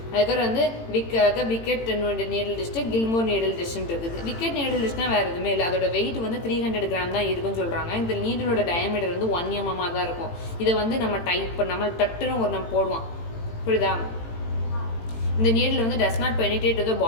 அதுக்கப்புறம் வந்து விக்கெட் நீடல் டெஸ்ட்டு, கில்மோர் நீடல் டெஸ்ட்னு இருக்குது. விக்கெட் நீடல் டெஸ்ட்னா வேறு எதுவுமே இல்லை. அதோட வெயிட் வந்து 300 கிராம் தான் இருக்குன்னு சொல்கிறாங்க. இந்த நீடலோட டயமீட்டர் வந்து 1 mm தான் இருக்கும். இதை வந்து நம்ம டட்டுன்னு நம்ம போடுவோம். புரியுதா? இந்த நீடில் வந்து does not penetrate to the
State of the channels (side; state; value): right; late; 18 ms